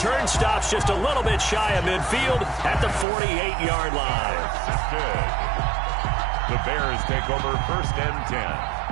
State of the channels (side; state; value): left; drops out; at 3.1 s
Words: stops just a little bit shy of midfield at the 48-yard line. The Bears take over 1st and 10